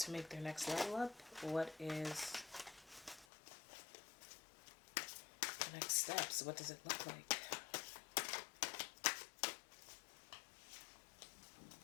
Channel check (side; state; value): right; drops out; at 3.2 s